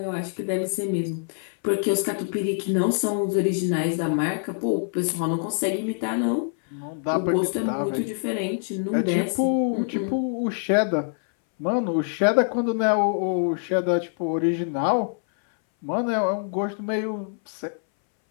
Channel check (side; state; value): right; silent; 61 dB below the other